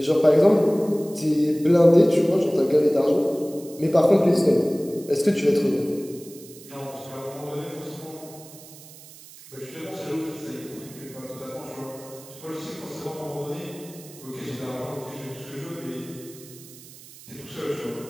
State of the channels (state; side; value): noise; right; hiss, 19 dB below the sound